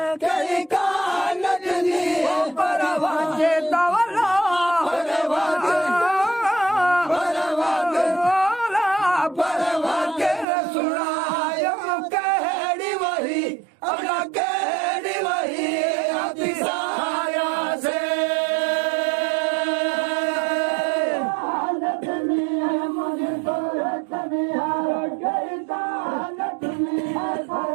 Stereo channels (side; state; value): left; drops out; at 10.5 s